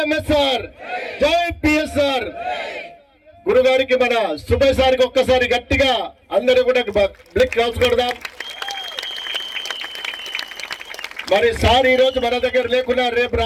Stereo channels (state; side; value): identical; both; correlation 1.00